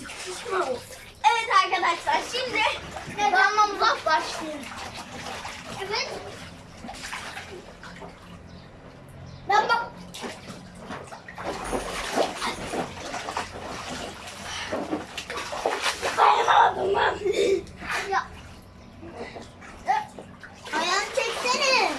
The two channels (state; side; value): identical; both; correlation 1.00